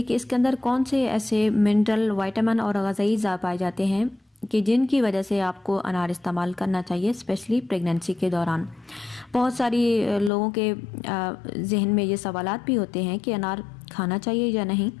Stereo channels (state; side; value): drops out; right; at 10.3 s